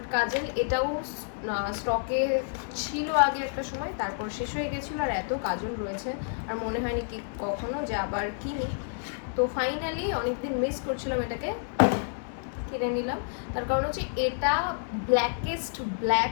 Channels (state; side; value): silent; right; digital silence